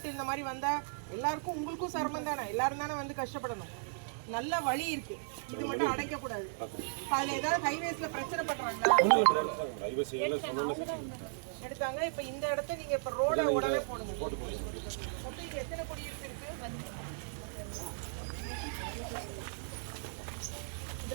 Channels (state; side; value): silent; left; digital silence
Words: இந்த மாதிரி வந்தா எல்லாருக்கும் உங்களுக்கும் சிரமம் தானே. எல்லாரும் தானே வந்து கஷ்டப்படணும். நல்ல வழி இருக்கு, இது மட்டும் அடைக்க கூடாது. அதுல ஏதாவது ஹைவேஸ்ல பிரச்சனை பண்றாங்களா? எடுத்தாங்க. இப்ப இந்த இடத்த நீங்க இப்ப ரோட உடனே போடுங்க. மொத்தம் இங்க எத்தனை குடியிருப்பு இருக்கு?